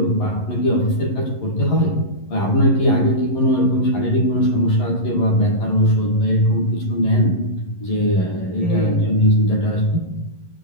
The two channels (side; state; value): right; late; 11 ms